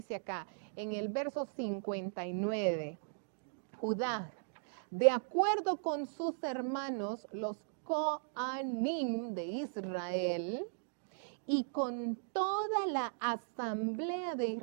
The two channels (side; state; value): left; silent; digital silence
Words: acá en el verso 59. Judá, de acuerdo con sus hermanos, los Coanim de Israel, y con toda la asamblea de